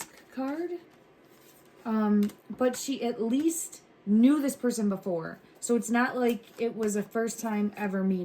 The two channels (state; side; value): identical; both; correlation 1.00